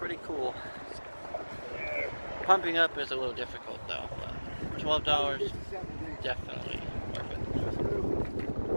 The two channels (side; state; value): both; inverted; correlation -1.00